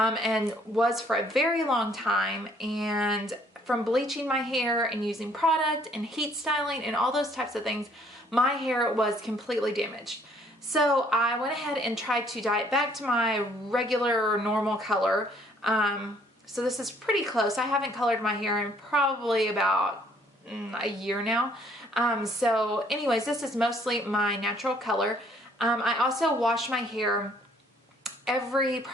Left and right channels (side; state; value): both; normal; correlation 0.63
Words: was for a very long time. And from bleaching my hair and using product and heat styling and all those types of things, my hair was completely damaged. So I went ahead and tried to dye it back to my regular normal color. So this is pretty close. I haven't colored my hair in probably about a year now. So anyways, this is mostly my natural color. I also wash my hair every